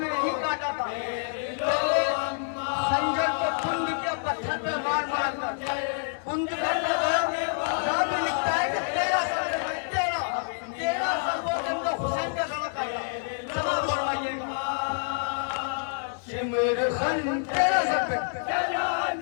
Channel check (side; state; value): right; silent; digital silence